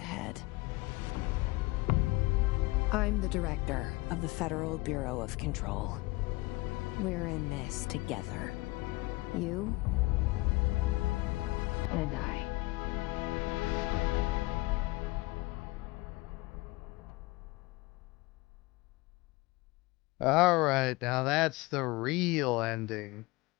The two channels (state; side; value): quieter; right; 22.1 dB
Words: I'm the director of the Federal Bureau of Control. We're in this together. You and I. Alright, now that's the real ending.